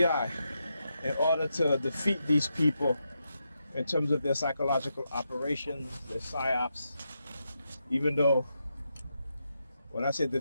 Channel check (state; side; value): inverted; both; correlation -0.85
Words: in order to defeat these people in terms of their psychological operations, their psyops, even though when I say